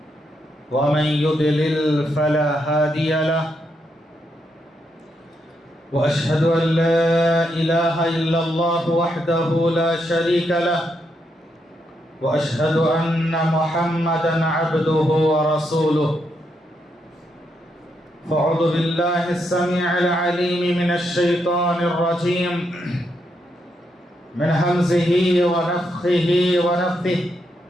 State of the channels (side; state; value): both; normal; correlation 0.80